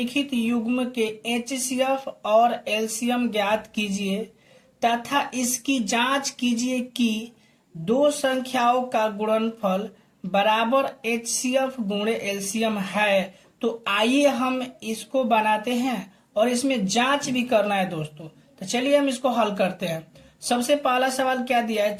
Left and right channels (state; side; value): identical; both; correlation 1.00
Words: युग्म के एचसीएफ और एलसीएम ज्ञात कीजिए तथा इसकी जांच कीजिए कि दो संख्याओं का गुणनफल बराबर एचसीएफ गुणे एलसीएम है। तो आइए हम इसको बनाते हैं और इसमें जांच भी करना है दोस्तों। तो चलिए हम इसको हल करते हैं। सबसे पहला सवाल क्या दिया है,